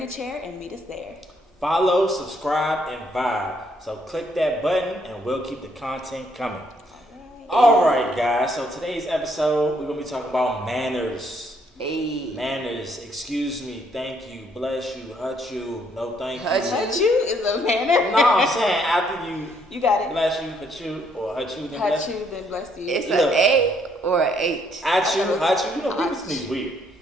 a chair and meet us there. Follow, subscribe, and vibe. So click that button and we'll keep the content coming. Alright guys, so today's episode we're going to be talking about manners. Hey. Manners, excuse me, thank you, bless you, hurt you, no thank you. Hurt you is a manner? No, I'm saying after you got it. Bless you, hurt you, or hurt you, then bless you. Then bless you. It's an A or an H. At you, hurt you. You know, people sneeze weird.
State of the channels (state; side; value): normal; both; correlation 0.69